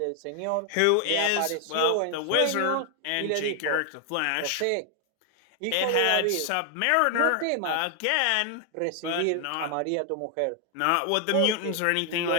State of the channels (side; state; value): both; different; correlation 0.00